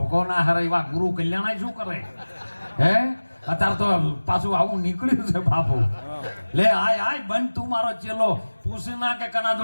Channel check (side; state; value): both; inverted; correlation -1.00